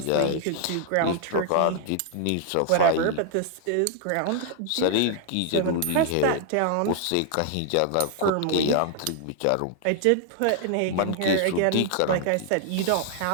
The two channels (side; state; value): both; different; correlation 0.00